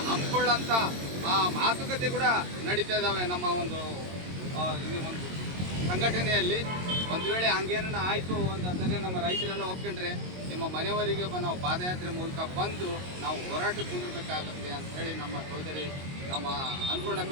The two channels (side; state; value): left; late; 22 ms